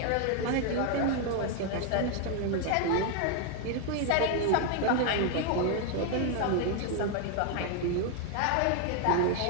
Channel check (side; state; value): both; different; correlation 0.01